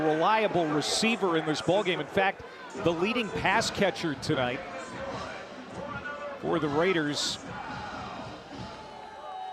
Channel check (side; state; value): both; identical; correlation 1.00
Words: receiver in this ballgame. In fact, the leading pass catcher tonight for the Raiders.